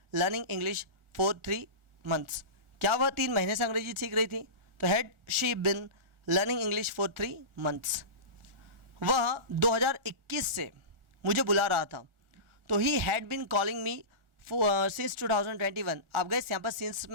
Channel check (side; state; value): left; late; 1.4 ms